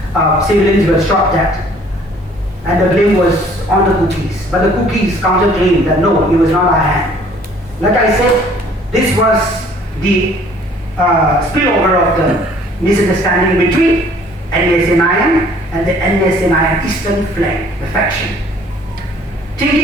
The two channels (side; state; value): both; normal; correlation 0.56